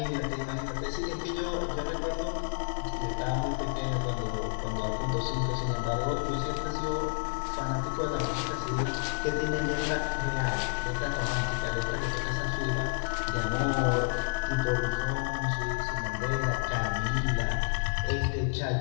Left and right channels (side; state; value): right; silent; digital silence